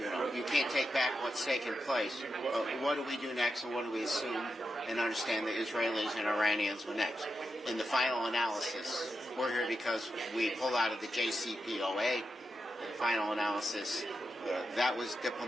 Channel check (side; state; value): both; normal; correlation 0.88